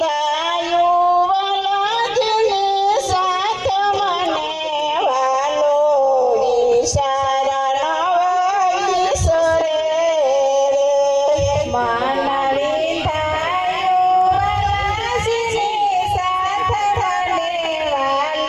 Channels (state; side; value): identical; both; correlation 1.00